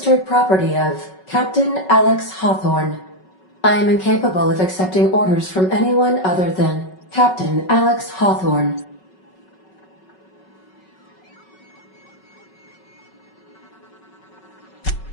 property of Captain Alex Hawthorne. I am incapable of accepting orders from anyone other than Captain Alex Hawthorne.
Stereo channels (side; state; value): right; late; 5.3 ms